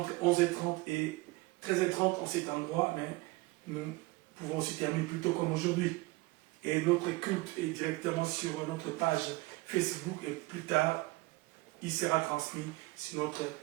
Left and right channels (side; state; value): left; quieter; 21.8 dB